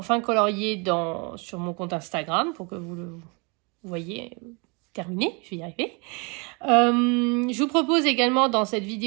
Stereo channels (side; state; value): left; quieter; 31.1 dB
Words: colorié sur mon compte Instagram pour que vous le voyez terminé, je vais y arriver. Je vous propose également dans cette